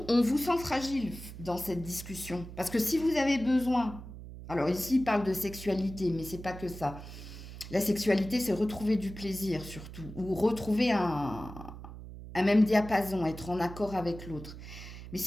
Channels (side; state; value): right; noise; hum, 13 dB below the sound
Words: on vous sent fragile dans cette discussion. Parce que si vous avez besoin, alors ici, il parle de sexualité, mais c'est pas que ça. La sexualité, c'est retrouver du plaisir surtout, ou retrouver un même diapason, être en accord avec l'autre. Mais